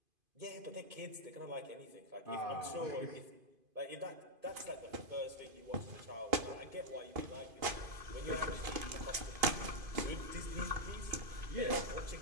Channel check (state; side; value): late; left; 2.5 ms